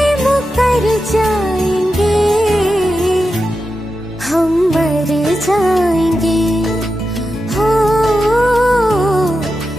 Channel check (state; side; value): normal; both; correlation 0.90